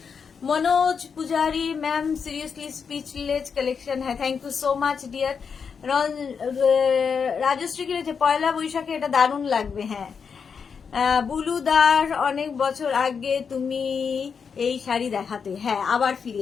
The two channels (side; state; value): right; quieter; 6.2 dB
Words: Manoj Pujari ma'am, seriously speechless collection হ্যাঁ, thank you so much dear. Rajashree কি রয়েছে, পয়লা বৈশাখে এটা দারুণ লাগবে। হ্যাঁ, বুলুদার অনেক বছর আগে তুমি এই শাড়ি দেখাতে, হ্যাঁ আবার ফিরে